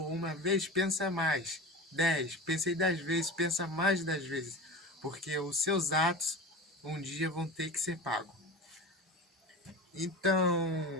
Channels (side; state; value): both; normal; correlation 0.31